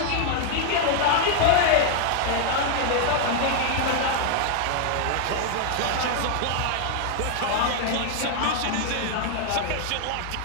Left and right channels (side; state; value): both; different; correlation 0.00